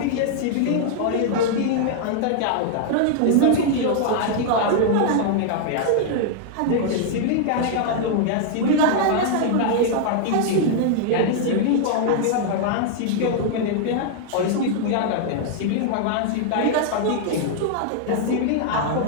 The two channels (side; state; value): both; different; correlation -0.01